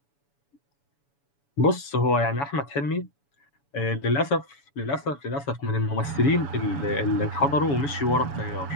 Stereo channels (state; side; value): late; right; 7.1 ms